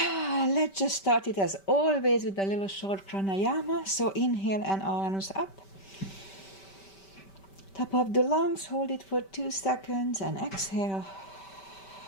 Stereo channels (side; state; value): right; late; 5.2 ms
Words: just start it as always with a little short pranayama. So inhale and arms up. Top of the lungs, hold it for 2 seconds and exhale.